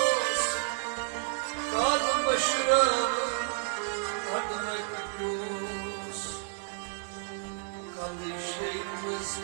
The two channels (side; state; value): left; silent; 56 dB below the other